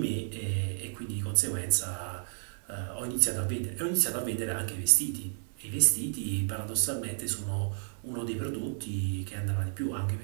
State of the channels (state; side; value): silent; left; 57 dB below the other